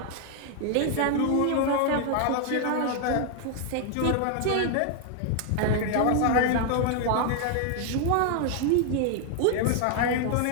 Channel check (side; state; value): both; different; correlation 0.00